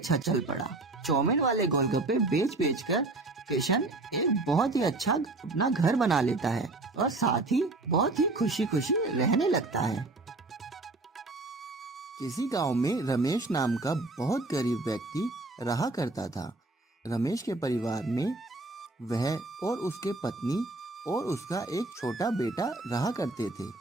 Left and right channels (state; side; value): quieter; left; 3.1 dB